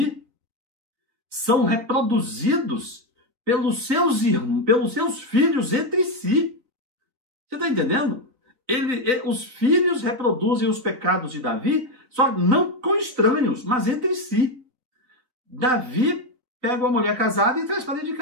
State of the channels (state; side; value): late; left; 3.8 ms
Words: são reproduzidos pelos seus filhos entre si. Você está entendendo? Os filhos reproduzem os pecados de Davi, só não com estranhos, mas entre si. Davi pega uma mulher casada e traz para dentro de